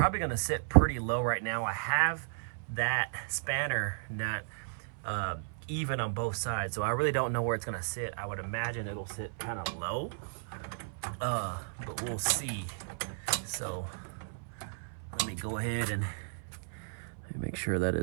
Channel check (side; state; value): left; silent; 55 dB below the other